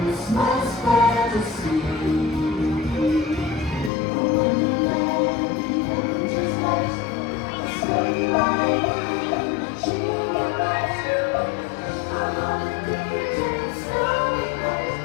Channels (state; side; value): drops out; right; at 3.9 s